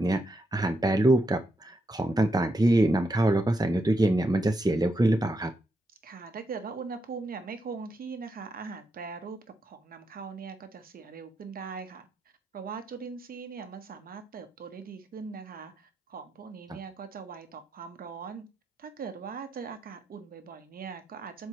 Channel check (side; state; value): both; normal; correlation 0.83